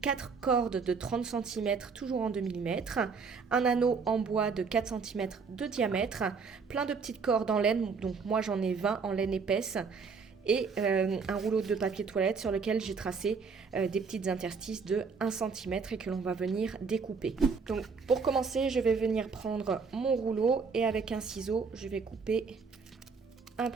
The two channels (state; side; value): quieter; left; 5.2 dB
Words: 4 cordes de 30 cm toujours en 2 mm, un anneau en bois de 4 cm de diamètre, plein de petites cordes en laine, donc moi j'en ai 20 en laine épaisse, et un rouleau de papier toilette sur lequel j'ai tracé des petites interstices de 1 cm et que l'on va venir découper. Donc pour commencer, je vais venir prendre mon rouleau et avec un ciseau, je vais couper un